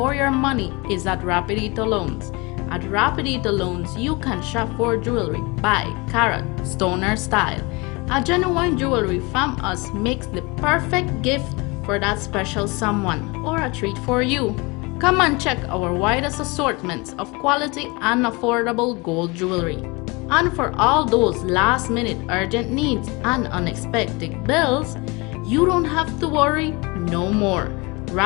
your money is at Rapidito Loans. At Rapidito Loans, you can shop for jewelry by carat, stoner style. A genuine jewelry from us makes the perfect gift for that special someone or a treat for you. Come and check our widest assortments of quality and affordable gold jewelry. And for all those last-minute urgent needs and unexpected bills, you don't have to worry no more.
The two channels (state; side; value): quieter; right; 26.5 dB